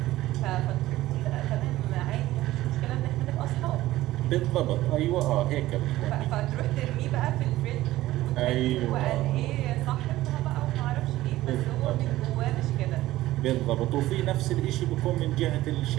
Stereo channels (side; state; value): left; quieter; 16.0 dB